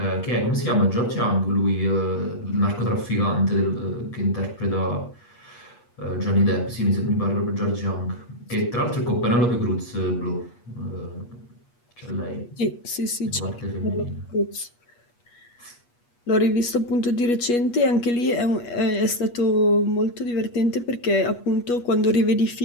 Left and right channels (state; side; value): late; right; 8.3 ms